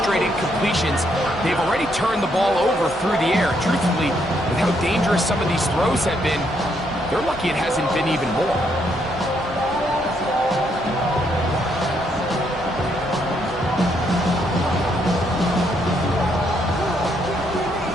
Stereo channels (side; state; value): both; normal; correlation 0.74